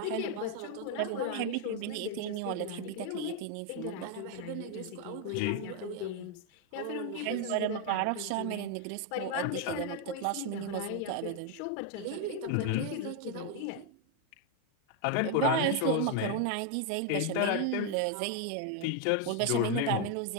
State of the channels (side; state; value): both; different; correlation 0.01